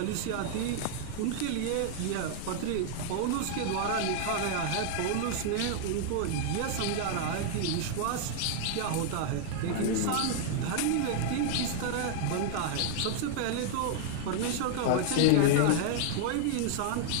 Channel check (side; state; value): both; different; correlation -0.01